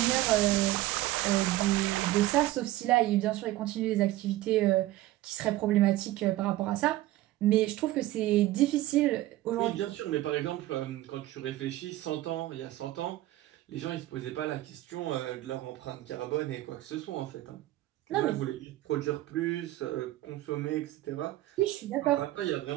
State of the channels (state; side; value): quieter; left; 16.0 dB